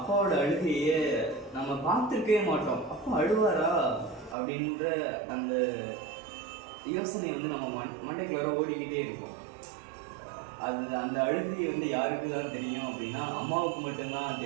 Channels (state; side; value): drops out; left; at 4.4 s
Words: அழுகையே நம்ம பார்த்துருக்கவே மாட்டோம். அப்பா அழுவாரா அப்படின்ற அந்த யோசனை நம்ம மண்டைக்குள்ளார ஓடிக்கிட்டே இருக்கும். அந்த அழுகை யாருக்கு தான் தெரியும் அப்படின்னா அம்மாவுக்கு மட்டும்தான்